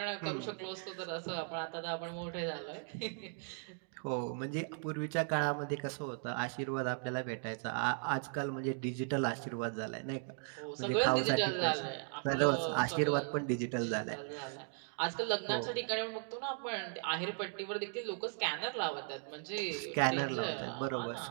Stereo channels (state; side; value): silent; left; 53 dB below the other